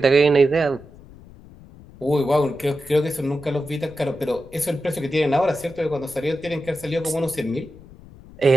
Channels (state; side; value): noise; left; rumble, 21 dB below the sound